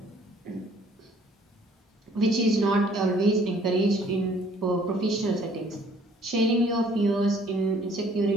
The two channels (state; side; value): normal; both; correlation 0.59